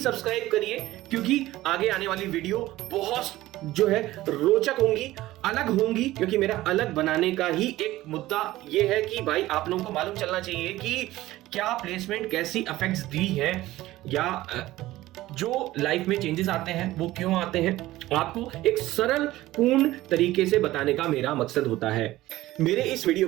करिए, क्योंकि आगे आने वाली वीडियो बहुत जो है रोचक होंगी, अलग होंगी, क्योंकि मेरा अलग बनाने का ही एक मुद्दा ये है कि भाई आप लोगों को मालूम चलना चाहिए कि क्या प्लेसमेंट कैसी इफेक्ट्स दी है, या जो लाइफ में चेंजेस आते हैं वो क्यों आते हैं, आपको एक सरल पूर्ण तरीके से बताने का मेरा मकसद होता है। मेरे इस वीडियो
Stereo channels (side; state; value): left; quieter; 16.6 dB